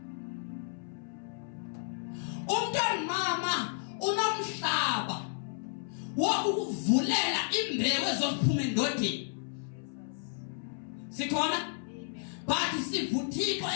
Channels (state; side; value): silent; right; 56 dB below the other